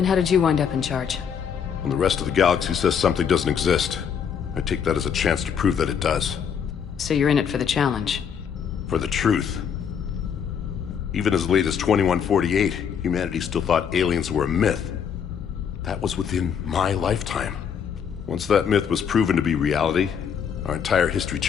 how did you wind up in charge? When the rest of the galaxy says something doesn't exist, I take that as a chance to prove that it does. So you're in it for the challenge? For the truth. Even as late as 2148, humanity still thought aliens were a myth. That was within my lifetime. Once that myth was proven to be reality, our entire history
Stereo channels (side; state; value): right; quieter; 7.5 dB